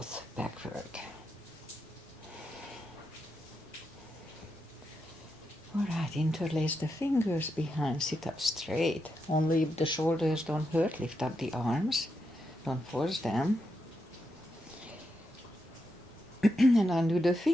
backward. All right, interlace the fingers behind, sit up straight. Only if the shoulders don't hurt, lift up the arms. Don't force them. And undo the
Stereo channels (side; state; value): both; normal; correlation 0.84